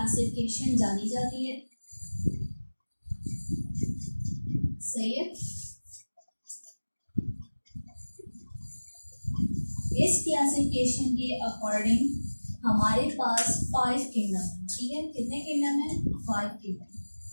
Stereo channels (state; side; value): inverted; both; correlation -1.00